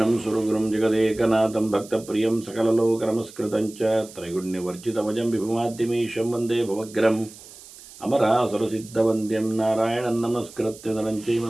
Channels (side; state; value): right; noise; hiss, 19 dB below the sound